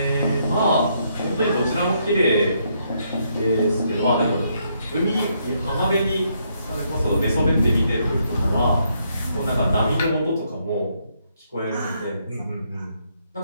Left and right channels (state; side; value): inverted; both; correlation -0.74